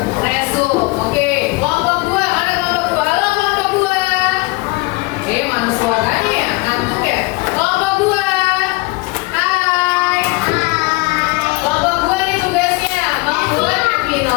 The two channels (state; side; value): quieter; right; 24.6 dB